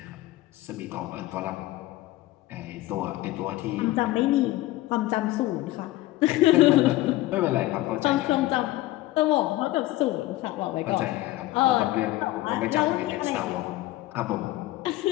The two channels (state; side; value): quieter; right; 17.3 dB